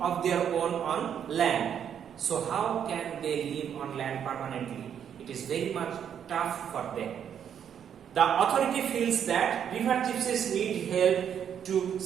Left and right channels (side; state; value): left; quieter; 8.7 dB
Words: of their own on land. So how can they live on land permanently? It is very much tough for them. The authority feels that river gypsies need help to